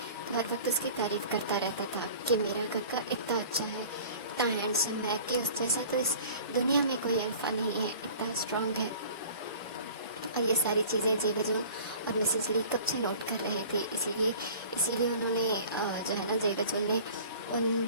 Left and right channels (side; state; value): both; inverted; correlation -0.45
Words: हर वक्त उसकी तारीफ़ करता रहता था कि मेरा गग्गा इतना अच्छा है, इतना हैंडसम है कि उस जैसा तो इस दुनिया में कोई अल्फ़ा नहीं है, इतना स्ट्रांग है। और ये सारी चीज़ें जेवजुन और मिसेस ली कब से नोट कर रहे थे, इसीलिए उन्होंने जो है ना, जेवजुन ने उन